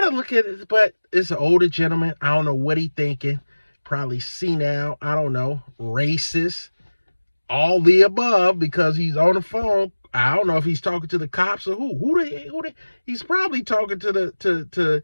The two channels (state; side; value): inverted; both; correlation -1.00